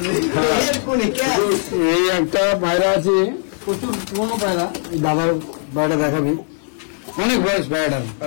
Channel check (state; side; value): silent; right; digital silence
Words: থেকে। এই একটা পায়রা আছে, প্রচুর পুরোনো পায়রা, দাদার পায়রা দেখাবি, অনেক বয়স পায়রা,